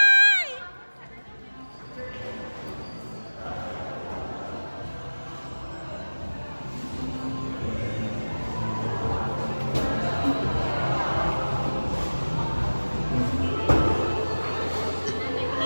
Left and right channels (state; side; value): inverted; both; correlation -1.00